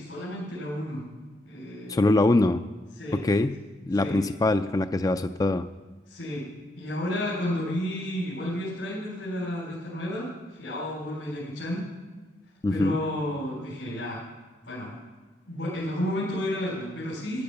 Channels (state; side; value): normal; both; correlation 0.77